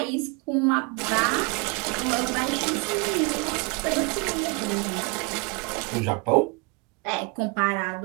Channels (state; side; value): quieter; left; 30.2 dB